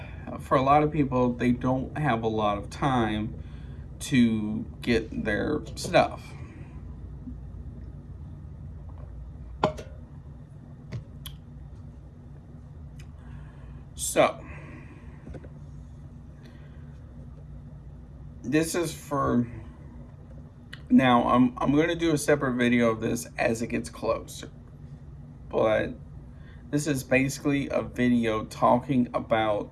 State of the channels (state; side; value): identical; both; correlation 1.00